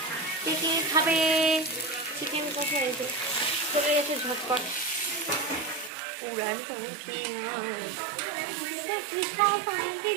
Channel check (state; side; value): drops out; left; at 5.9 s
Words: কে কে খাবে চিকেন কোথায় চলে গেছে ঝটপট উড়ান করে